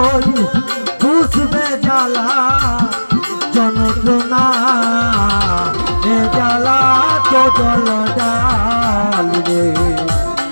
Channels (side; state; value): both; inverted; correlation -1.00